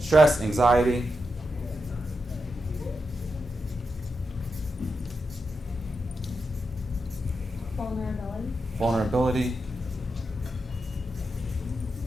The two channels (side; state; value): both; normal; correlation 0.87